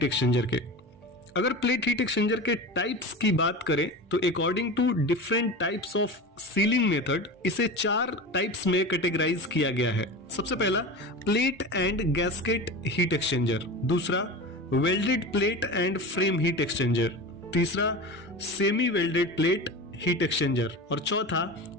एक्सचेंजर के। अगर प्लेट हीट एक्सचेंजर के टाइप्स की बात करें तो according to different types of sealing method इसे 4 टाइप्स में कैटेगराइज किया गया है। सबसे पहला plate and gasket heat exchanger, दूसरा welded plate and frame heat exchanger, तीसरा semi welded plate heat exchanger और चौथा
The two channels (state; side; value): normal; both; correlation 0.29